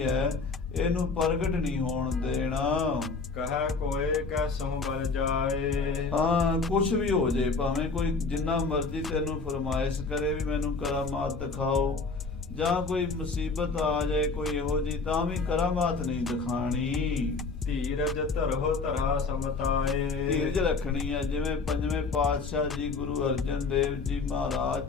ਹੈ, ਇਹਨੂੰ ਪ੍ਰਗਟ ਨਹੀਂ ਹੋਣ ਦੇਣਾ। ਕਹੈ ਕੋਏ ਕੈਸਹੁ ਬਲ ਜਾਏ। ਹਾਂ, ਕੁਛ ਵੀ ਹੋ ਜੇ, ਭਾਵੇਂ ਕੋਈ ਜਿੰਨਾ ਮਰਜ਼ੀ ਤੈਨੂੰ ਫਰਮਾਇਸ਼ ਕਰੇ ਵੀ ਮੈਨੂੰ ਕਰਾਮਾਤ ਦਿਖਾਓ, ਜਾਂ ਕੋਈ ਮੁਸੀਬਤ ਆ ਜਾਏ ਕੋਈ ਇਹੋ ਜੀ, ਤਾਂ ਵੀ ਕਰਾਮਾਤ ਨਹੀਂ ਦਿਖਾਣੀ। ਧੀਰਜ ਧਰਹੁ ਧਰਾ ਸਮਤਾਏ। ਧੀਰਜ ਰੱਖਣੀ ਹੈ। ਜਿਵੇਂ ਪੰਜਵੇਂ ਪਾਤਸ਼ਾਹ ਜੀ ਗੁਰੂ ਅਰਜਨ ਦੇਵ ਜੀ ਮਹਾਰਾਜ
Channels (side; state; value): right; quieter; 4.2 dB